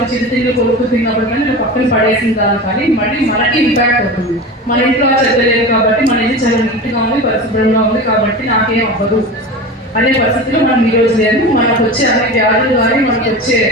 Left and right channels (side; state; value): both; normal; correlation 0.29